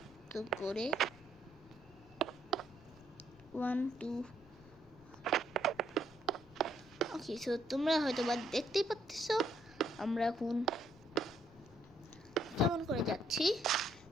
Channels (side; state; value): left; noise; rumble, 23 dB below the sound